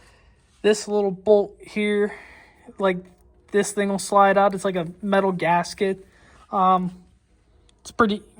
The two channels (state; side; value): identical; both; correlation 1.00